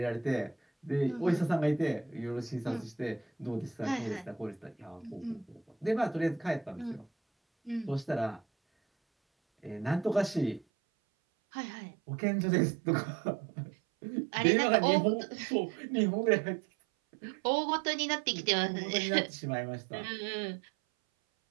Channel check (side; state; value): left; drops out; at 10.7 s